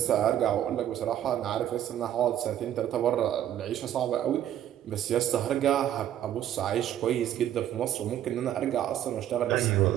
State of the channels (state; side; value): quieter; left; 11.3 dB